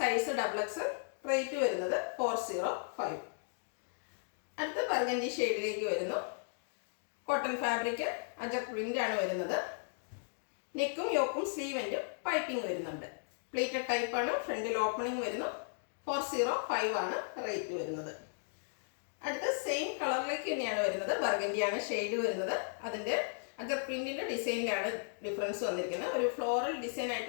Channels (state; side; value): silent; right; digital silence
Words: double XL. Rate വരുന്നത് 405. അടുത്ത ബർഗൻഡി ഷെയ്ഡിലേക്ക് വരുന്നു. കോട്ടൺ ഫാബ്രിക് അജർ പ്രിന്റ് ആണ് വരുന്നത്. നെക്കും യോക്കും സ്ലീവെൻറ്റും പൈപ്പിംഗ് വരുന്നുണ്ട്. പ്ലീറ്റഡ് ടൈപ്പാണ്. ഫ്രണ്ടിൽ ഓപ്പണിംഗ് വരുന്നു. 405 ആണ് റേറ്റ് വരുന്നത്. അടുത്ത സെയിം കളറിലേക്ക് തന്നെയാണ് വരുന്നത്. ബർഗൻഡിയാണ് ഷെയ്ഡ് വരുന്നത്. അതിൻ്റെ അജർ പ്രിന്റിൻ്റെ ഡിസൈനിലാണ് ഡിഫറൻസ് വന്നിരിക്കുന്നത്. ഒരു ഫ്ലോറൽ ഡിസൈൻ